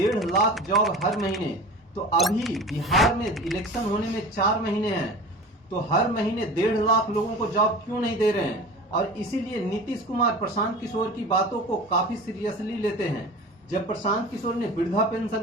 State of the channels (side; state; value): both; normal; correlation 0.36